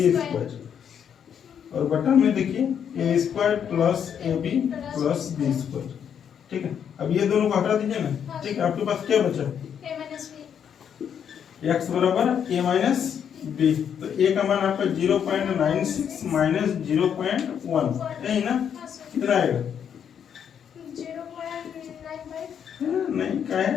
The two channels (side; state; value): right; quieter; 8.2 dB